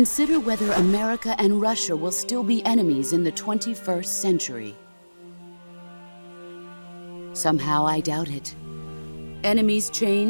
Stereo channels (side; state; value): both; inverted; correlation -1.00